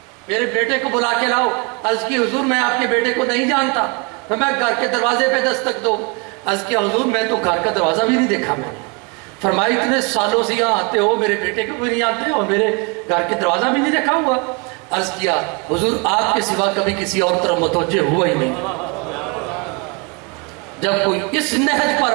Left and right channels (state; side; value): quieter; left; 30.4 dB